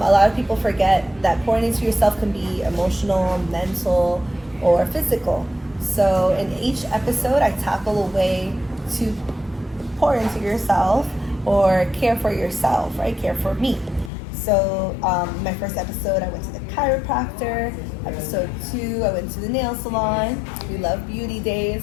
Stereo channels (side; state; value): right; drops out; at 14.1 s